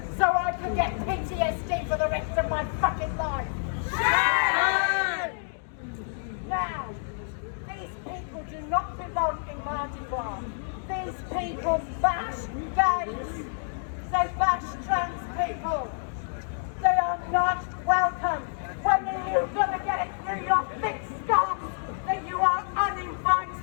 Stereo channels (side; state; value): right; silent; digital silence